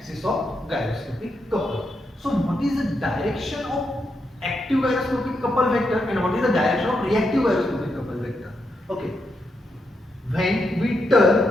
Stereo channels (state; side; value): normal; both; correlation 0.82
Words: of gyroscopic couple. So what is the direction of active gyroscopic couple vector and what is the direction of reactive gyroscopic couple vector? Okay. When we